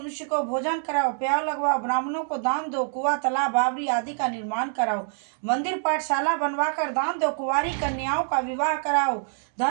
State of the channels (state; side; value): silent; left; 57 dB below the other